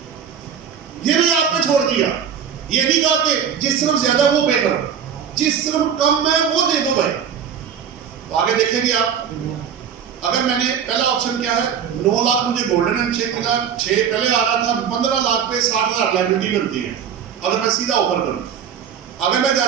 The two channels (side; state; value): left; quieter; 8.0 dB